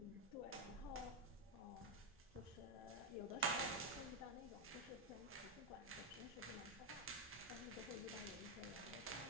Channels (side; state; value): both; normal; correlation 0.02